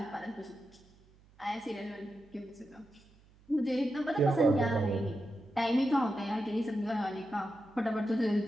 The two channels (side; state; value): right; noise; hum, 28 dB below the sound